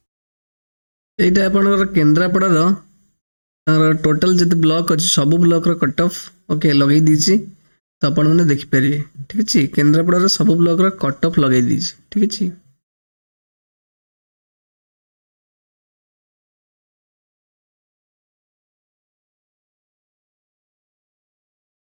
एटा आपन केंद्रापड़ा रो टोटल जिते ब्लॉक अच्छी सब ब्लॉक रो कट ऑफ ओके लगे दीची तो आपण मैंने देखिपारे ठीक अच्छे केन्द्रापड़ा सब ब्लॉक रो कट ऑफ लगे दीची ठीक अच्छे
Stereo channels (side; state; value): both; inverted; correlation -1.00